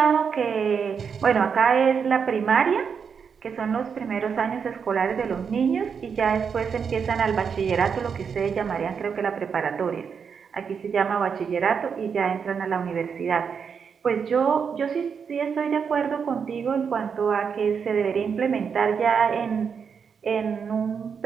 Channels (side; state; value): left; quieter; 6.5 dB